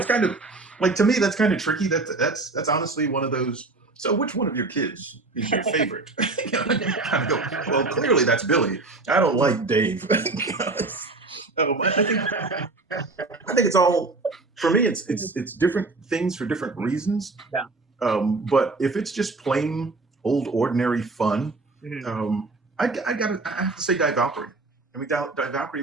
kind of like, to me, that's kind of tricky. That's honestly one of those. So, which one of your kids is your favorite? You know, you kind of go, well, clearly that's Billy. I don't like Dave. I think it's all, for me. It's different things for different reasons. Yeah. But if it's just plain old ordinary fun, I have to say Die Valkyrie. I mean, Die Valkyrie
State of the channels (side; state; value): left; quieter; 3.5 dB